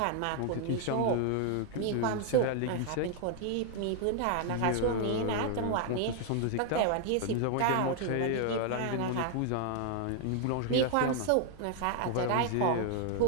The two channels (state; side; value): different; both; correlation 0.00